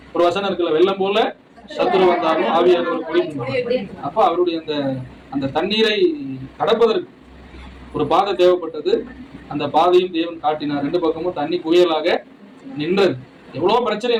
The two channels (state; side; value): identical; both; correlation 1.00